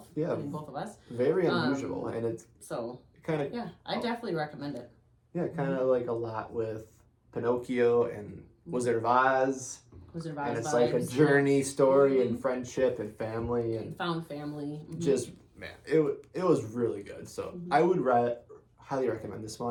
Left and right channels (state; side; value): identical; both; correlation 1.00